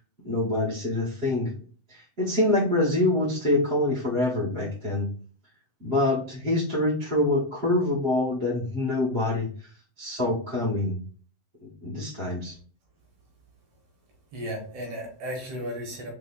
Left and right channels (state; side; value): late; left; 7.8 ms